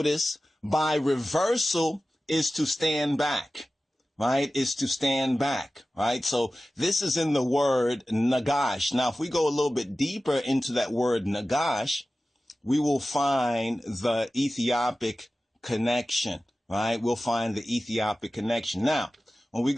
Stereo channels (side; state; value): both; normal; correlation 0.96